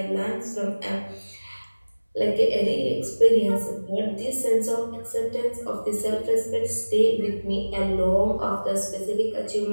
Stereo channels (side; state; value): both; inverted; correlation -1.00